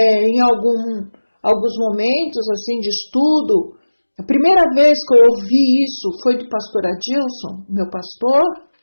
alguns momentos assim de estudo, a primeira vez que eu ouvi isso foi do pastor Adilson, meu pastor,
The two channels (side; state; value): both; inverted; correlation -1.00